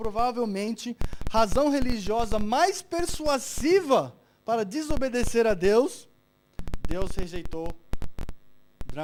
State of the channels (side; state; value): both; identical; correlation 1.00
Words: razão religiosa mais persuasiva para desobedecer a Deus, Deus rejeitou